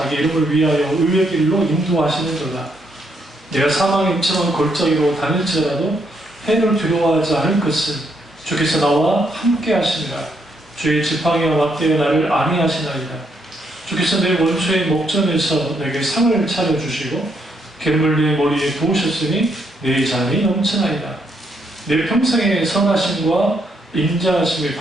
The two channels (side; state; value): both; normal; correlation 0.75